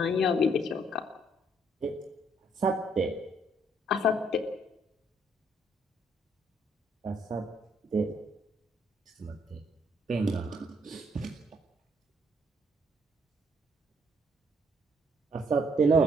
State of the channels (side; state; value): both; normal; correlation 0.68